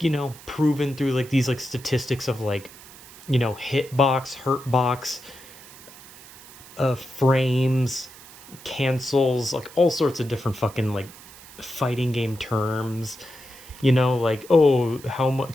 proven through like these like statistics of like, hitbox, hurtbox, frames, cancels, like all sorts of different fucking like fighting game terms. Like, oh, how much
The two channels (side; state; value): right; noise; hiss, 19 dB below the sound